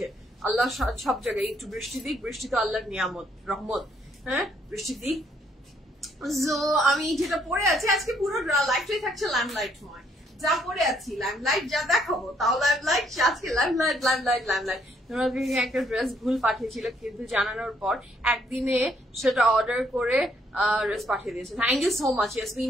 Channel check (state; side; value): normal; both; correlation 0.69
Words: আল্লাহ সব জায়গায় একটু বৃষ্টি দিক, বৃষ্টি তো আল্লাহর নিয়ামত, রহমত। হ্যাঁ, বৃষ্টি দিক। সো আমি যেটা পরে আছি আজকে পুরো লাইফটাই থাকছে লাইমলাইটময়। যা পরে আছি লাইমলাইট, যা দেখাবো তাও লাইমলাইট। আজকে লাইমলাইট লাইমলাইট লাইমলাইট। তোমাকে একটা ড্রেস ভুল পাঠিয়েছিল, কিন্তু জানানোর পর একদিনে সেটা অর্ডার করে ড্রেস পাঠিয়ে দিয়েছে। Thank you so much